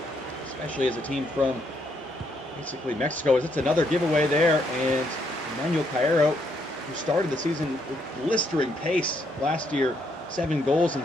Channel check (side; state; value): both; normal; correlation 0.74